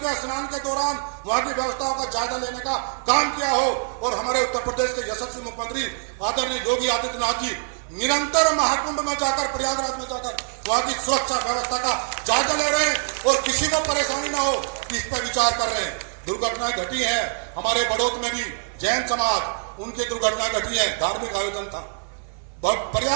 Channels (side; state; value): left; silent; 55 dB below the other